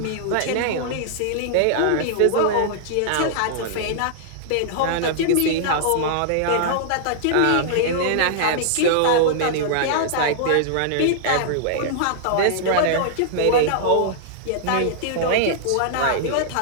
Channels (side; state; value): both; different; correlation -0.01